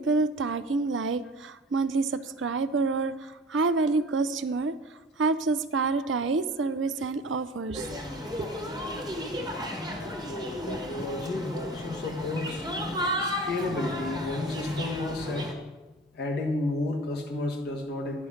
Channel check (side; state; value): both; normal; correlation 0.41